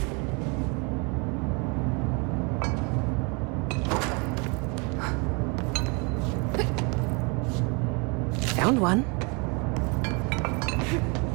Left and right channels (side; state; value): left; quieter; 31.5 dB